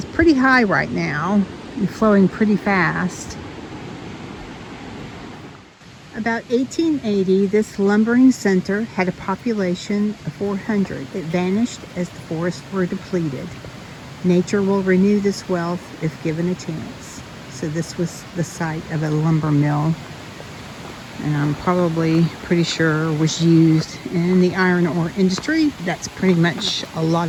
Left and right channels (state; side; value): identical; both; correlation 1.00